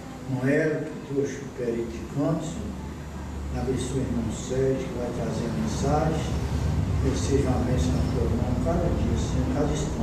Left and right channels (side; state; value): both; identical; correlation 1.00